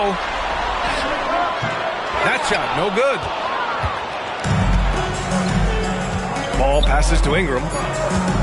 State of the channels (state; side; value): identical; both; correlation 1.00